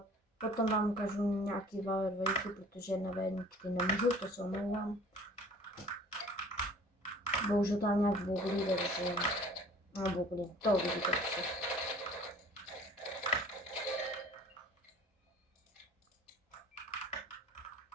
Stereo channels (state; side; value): normal; both; correlation 0.49